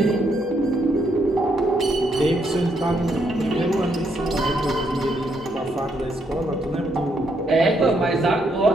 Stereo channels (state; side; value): normal; both; correlation 0.75